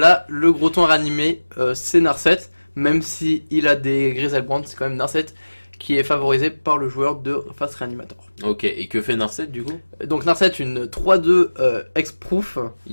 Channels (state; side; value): inverted; both; correlation -1.00